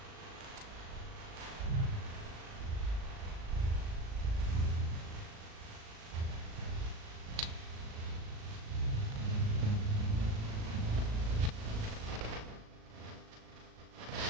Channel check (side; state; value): left; late; 37 ms